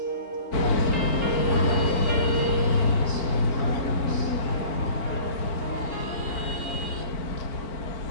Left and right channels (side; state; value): right; late; 4.4 ms